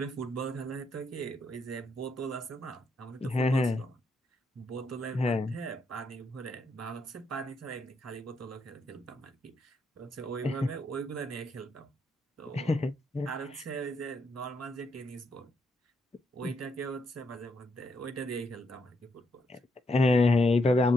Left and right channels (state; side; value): normal; both; correlation 0.77